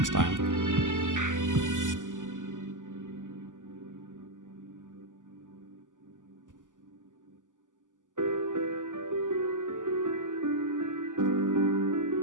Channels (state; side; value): late; left; 0.87 ms